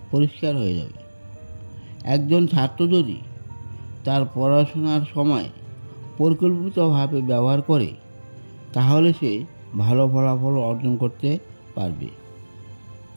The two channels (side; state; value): both; inverted; correlation -1.00